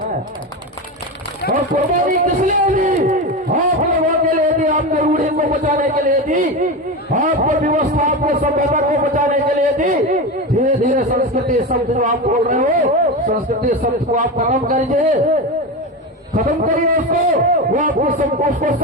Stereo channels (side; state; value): both; normal; correlation 0.20